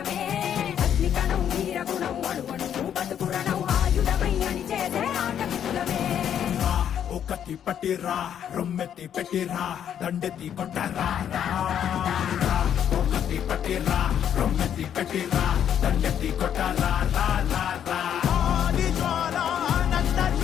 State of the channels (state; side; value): quieter; right; 9.3 dB